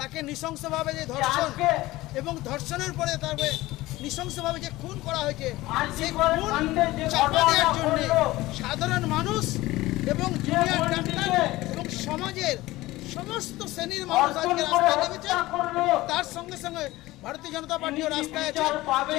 নৃশংসভাবে যে ধর্ষণ এবং ধর্ষণের পরে তারপরে নৃশংসভাবে যে খুন করা হয়েছে, সেই খুন চাপা দেওয়ার জন্য সাধারণ মানুষ এবং জুনিয়র ডাক্তার এবং সমাজের সমস্ত শ্রেণীর মানুষ আজকে রাস্তায় নেমেছে। তার সঙ্গে সঙ্গে ভারতীয় জনতা পার্টিও রাস্তায় আছে।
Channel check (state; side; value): quieter; right; 18.3 dB